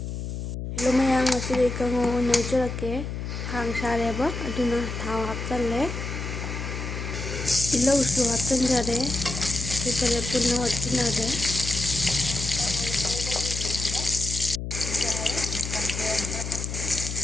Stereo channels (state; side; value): noise; left; hum, 5 dB below the sound